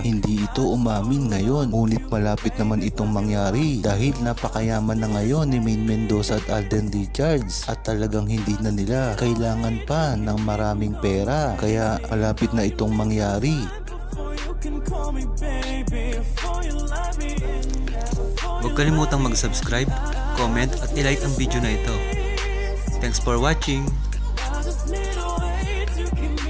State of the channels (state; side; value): identical; both; correlation 1.00